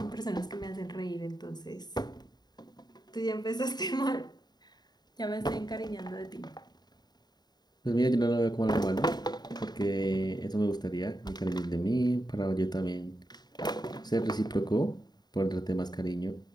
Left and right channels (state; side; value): late; right; 0.20 ms